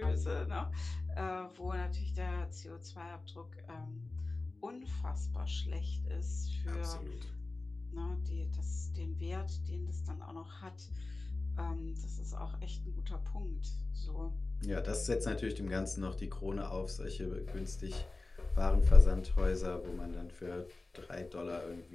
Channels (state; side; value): quieter; right; 3.3 dB